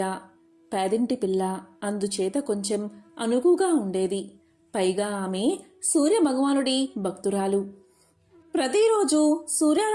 పేదింటి పిల్ల, అందుచేత కొంచెం అనుకుగా ఉండేది. పైగా ఆమె సూర్యభగవానుడి భక్తురాలు. ప్రతిరోజు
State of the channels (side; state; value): both; identical; correlation 1.00